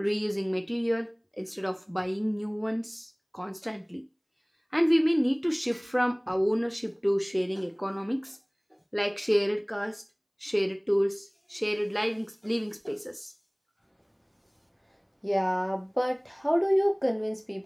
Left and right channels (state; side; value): identical; both; correlation 1.00